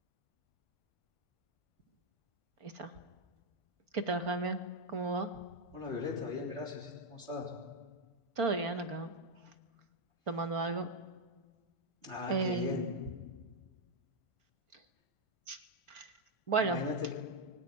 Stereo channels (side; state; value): right; late; 1.5 ms